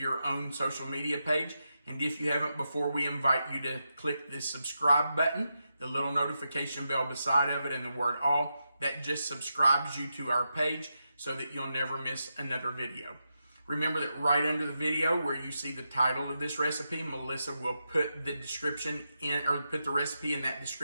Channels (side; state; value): both; inverted; correlation -0.87